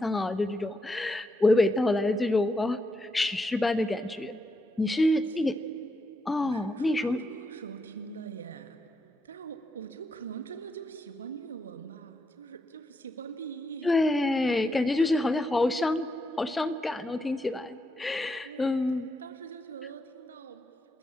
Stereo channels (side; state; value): both; normal; correlation 0.82